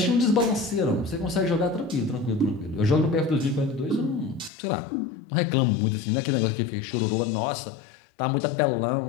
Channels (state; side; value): drops out; right; at 4.5 s